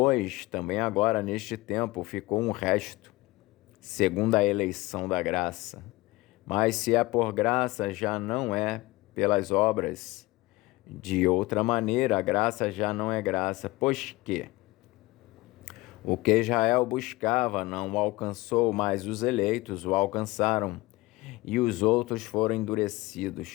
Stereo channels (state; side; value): quieter; right; 20.5 dB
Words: também agora neste tempo ficou um resto, segundo a eleição da graça. Mas se é por graça, já não é pelas obras. De outra maneira, a graça já não é graça, pois que o que Israel buscava não o alcançou, mas os eleitos o alcançaram, e os outros foram